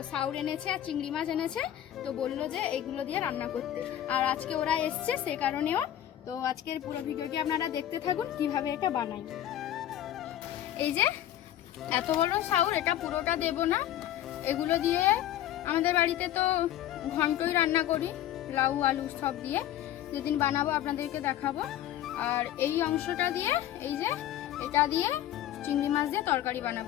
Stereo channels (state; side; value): quieter; right; 12.2 dB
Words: সাউর এনেছে আর চিংড়ি মাছ এনেছে। তো বললো যে এগুলো দিয়ে রান্না করতে, আর আজকে ওরা এসছে সে কারণেও। তো আজকের পুরো ভিডিওটি আপনারা দেখতে থাকুন কিভাবে এটা বানাই। এই যে এত বড় সাউর, এটা পুরোটা দেব না। এগুলো দিয়ে আমাদের বাড়িতে তো ঘন্টই রান্না করি, লাউ আলু সব দিয়ে। যেদিন বানাবো আপনাদেরকে দেখাবো। আর এই অংশটা দিয়ে, এই যে এটা দিয়ে চিংড়ি মাছ দিয়ে তরকারি